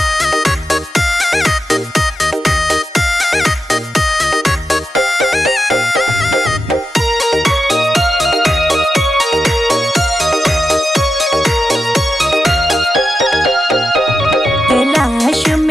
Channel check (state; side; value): normal; both; correlation 0.89